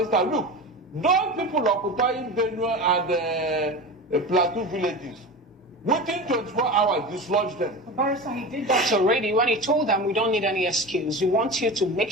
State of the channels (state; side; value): normal; both; correlation 0.29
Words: staff, look, those people occupying Benue and Plateau villages, within 24 hours, dislodge them. Barrister, he did that already when he told them we don't need any excuse. We want you to make